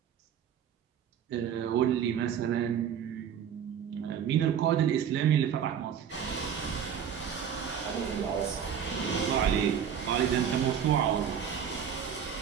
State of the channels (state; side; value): quieter; left; 8.4 dB